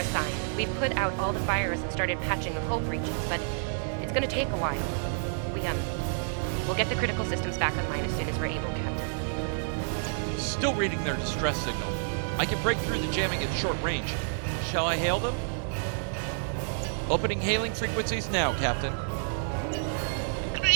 We've put out all the fires and started patching the hull breaches, but it's gonna take a while. We'll get the critical systems back online as soon as we're able, Captain. Still reading their distress signal. I can break through the jamming at short range. Shall I hail them? Opening hailing frequencies now, Captain.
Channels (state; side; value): silent; left; digital silence